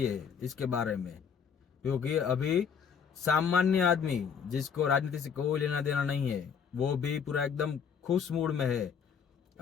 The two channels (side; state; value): right; quieter; 6.9 dB